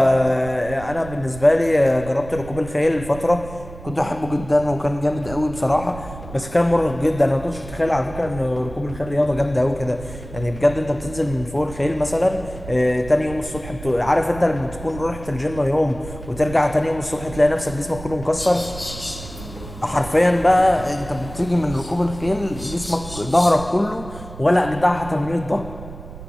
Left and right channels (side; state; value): right; noise; rumble, 14 dB below the sound